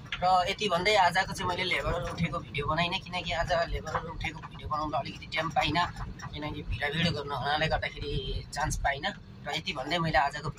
र यति भन्दै आजको चाहिँ मैले लेबरहरू उठेको भिडियो बनाइनँ, किनकि आज लेबरहरू उठेको भिडियो बनाउँदा अलिकति टाइम पाइनँ, किनकि भिडियो गर्नु हुनाले गर्दाखेरि चान्स पाइनँ। र यति भन्दै मैले आजको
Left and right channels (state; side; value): identical; both; correlation 1.00